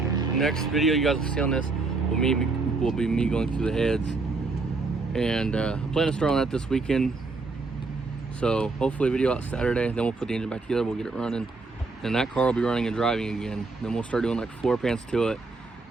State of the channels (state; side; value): quieter; left; 3.8 dB